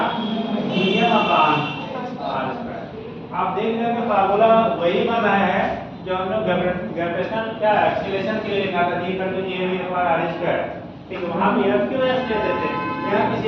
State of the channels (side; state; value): both; identical; correlation 1.00